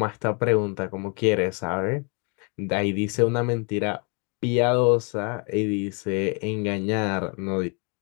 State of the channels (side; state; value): right; quieter; 35.7 dB